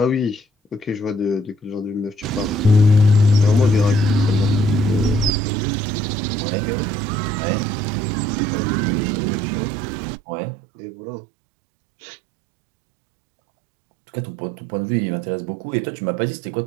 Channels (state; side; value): drops out; left; at 5.3 s